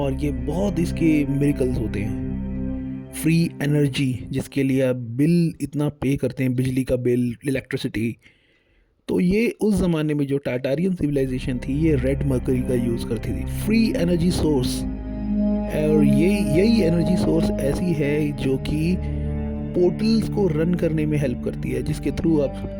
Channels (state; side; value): identical; both; correlation 1.00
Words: ये बहुत इसके मिरेकल्स होते हैं। फ्री एनर्जी, जिसके लिए आप बिल इतना पे करते हैं, बिजली का बिल, इलेक्ट्रिसिटी, तो ये उस ज़माने में जो टाटारियन सिविलाइजेशन थी ये रेड मर्करी का यूज़ करती थी। फ्री एनर्जी सोर्स, और यही एनर्जी सोर्स ऐसी है जो कि पोर्टल्स को रन करने में हेल्प करती है, जिसके थ्रू आप,